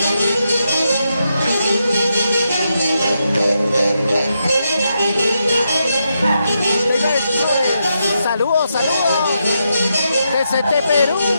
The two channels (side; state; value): both; inverted; correlation -0.83